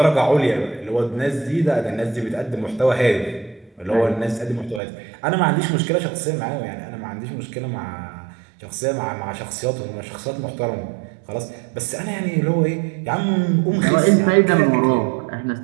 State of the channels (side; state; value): left; drops out; at 4.8 s